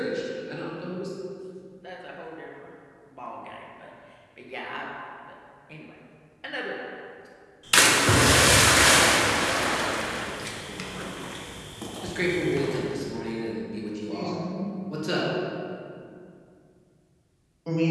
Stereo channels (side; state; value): both; identical; correlation 1.00